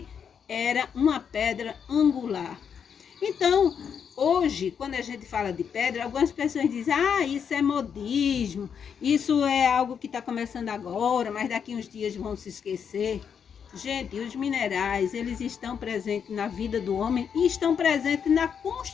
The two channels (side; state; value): right; quieter; 7.3 dB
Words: era uma pedra angular. Então, hoje, quando a gente fala de pedra, algumas pessoas dizem, isso é modismo, isso é algo que está começando agora, mas daqui uns dias vão se esquecer. Gente, os minerais, eles estão presentes na vida do homem e estão presentes na